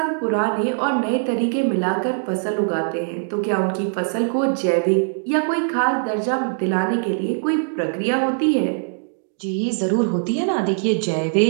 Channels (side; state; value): left; silent; digital silence